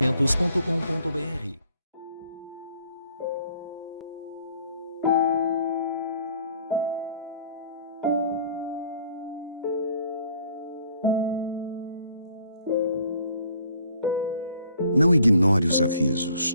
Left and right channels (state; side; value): inverted; both; correlation -0.59